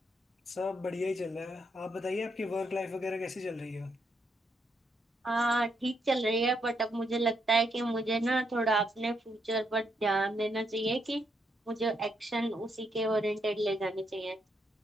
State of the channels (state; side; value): normal; both; correlation 0.77